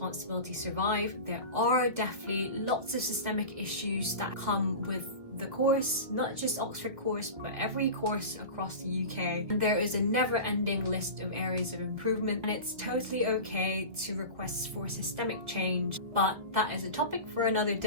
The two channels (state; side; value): late; left; 2.2 ms